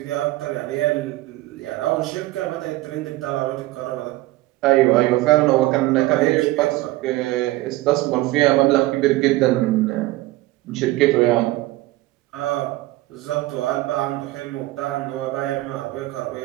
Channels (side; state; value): left; quieter; 18.3 dB